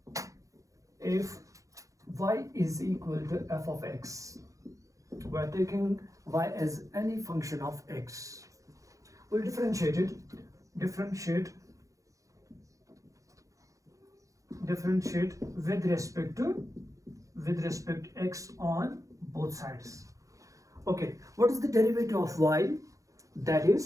If y is equal to f of x, we are taking y as any function of x. We'll differentiate with respect to x on both sides. Okay, what is the derivative of y? That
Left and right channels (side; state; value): left; late; 0.16 ms